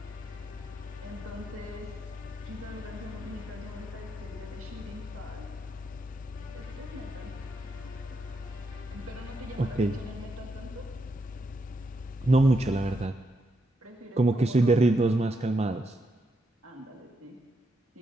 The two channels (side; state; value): both; normal; correlation 0.81